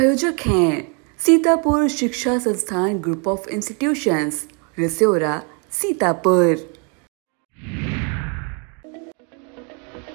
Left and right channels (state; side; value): quieter; left; 35.9 dB